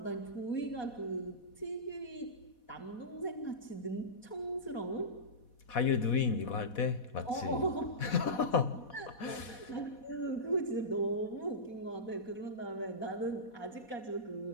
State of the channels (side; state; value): right; late; 4.2 ms